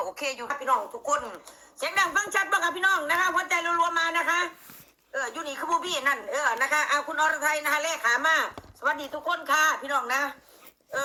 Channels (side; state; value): both; identical; correlation 1.00